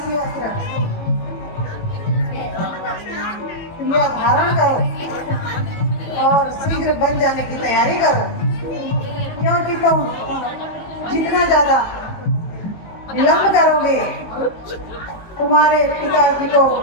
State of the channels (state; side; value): late; right; 18 ms